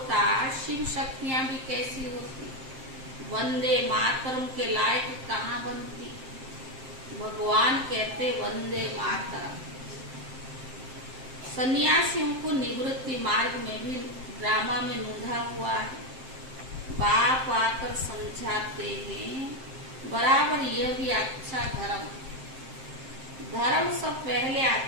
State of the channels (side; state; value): left; late; 7.6 ms